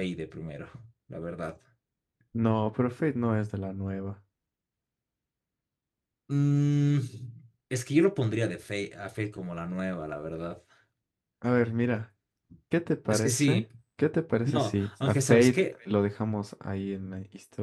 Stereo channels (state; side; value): identical; both; correlation 1.00